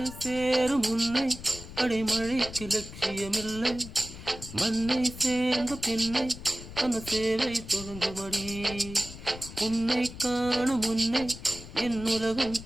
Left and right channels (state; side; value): noise; left; rumble, 13 dB below the sound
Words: சேரும் உன்னை அடைமழைக்கு லட்சியமில்லை. மண்ணை சேர்ந்த பின்னை அந்த சேவை தொடங்குமடி. உன்னை காணும் முன்னை என் உலகம்